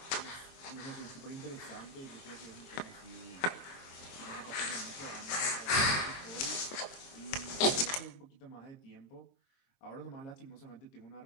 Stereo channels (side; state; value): right; late; 22 ms